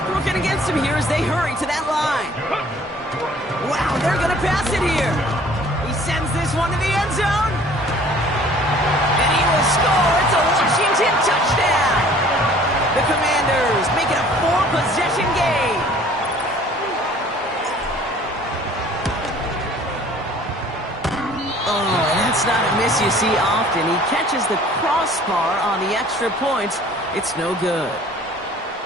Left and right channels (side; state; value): both; normal; correlation 0.52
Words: working against him here as they hurry to that line. Wow, they're going to pass it here. He sends this one to the end zone. And he will score. It's a Washington touchdown. The Commanders make it a 4-possession game. Oh, that's not a miss you see often. He catches the crossbar on the extra points. It's no good.